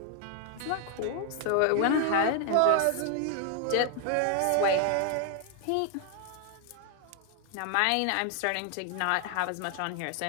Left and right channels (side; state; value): both; different; correlation 0.00